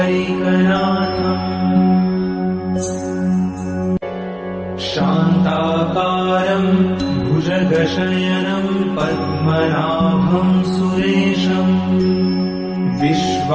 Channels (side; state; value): both; identical; correlation 1.00